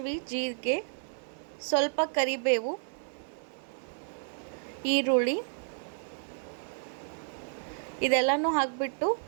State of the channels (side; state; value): left; silent; digital silence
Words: ಜೀರಿಗೆ, ಸ್ವಲ್ಪ ಕರಿಬೇವು, ಈರುಳ್ಳಿ ಇದೆಲ್ಲನೂ ಹಾಕಿಬಿಟ್ಟು